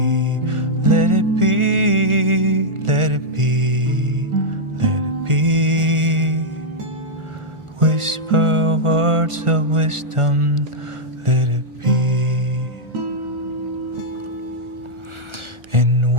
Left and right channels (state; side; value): late; left; 1.4 ms